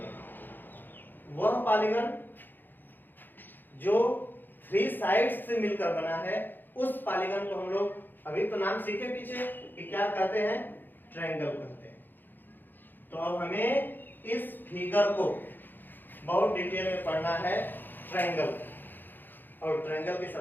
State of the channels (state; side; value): late; right; 0.091 ms